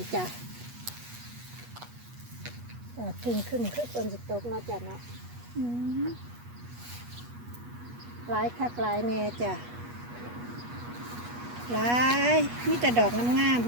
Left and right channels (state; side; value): late; left; 8.3 ms